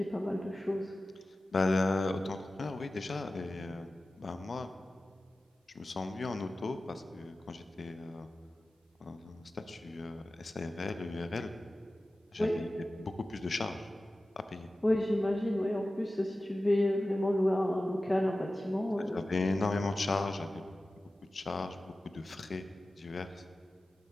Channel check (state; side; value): normal; both; correlation 0.95